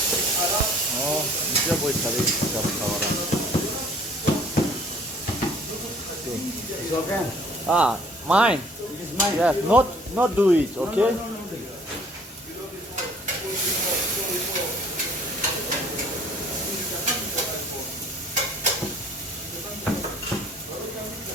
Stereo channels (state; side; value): normal; both; correlation 0.54